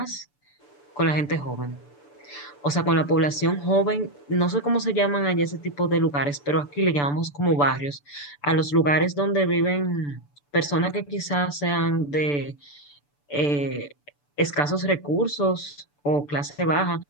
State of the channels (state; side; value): late; right; 6.9 ms